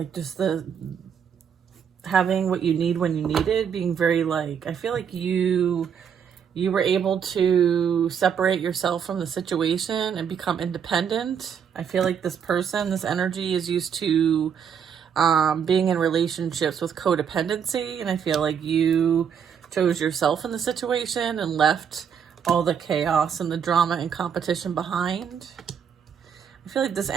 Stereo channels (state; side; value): quieter; left; 7.6 dB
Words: just the having what you need when you need it, being very like, I feel like you were able to separate yourself from the situation and become independent. I feel like this person, this energy is used to being in relationships with codependency. And I feel like you chose yourself in the situation and left all the chaos and the drama and competition behind. I feel like this